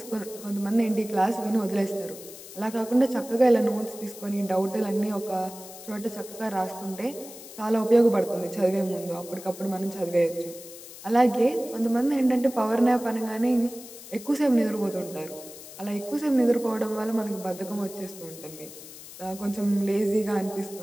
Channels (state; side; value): noise; left; hiss, 15 dB below the sound